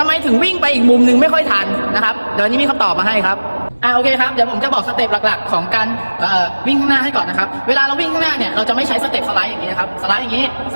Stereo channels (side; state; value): both; inverted; correlation -1.00